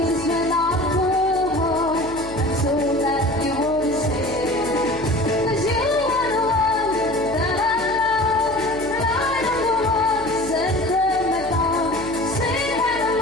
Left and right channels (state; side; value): noise; left; hum, 17 dB below the sound